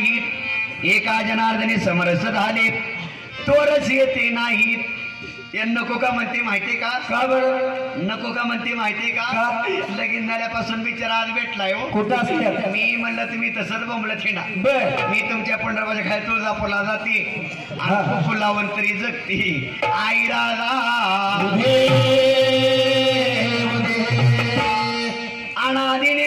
एका जनार्दनी समरस झाले, तोरस येते नाहीत. नको का म्हणते माहितीये का? का बरं नको का म्हणते माहितीये का? लगीन झाल्यापासून बिचारा आज भेटलाय हो. कुठं असते? मी म्हणलं तुम्ही तसंच बोंबलं थिंडा. मी तुमच्या पंढरपूरच्या खाली तुळजापूरला जाते आणि फुलावून तरी जगते. आई राजा अनादी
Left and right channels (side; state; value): both; identical; correlation 1.00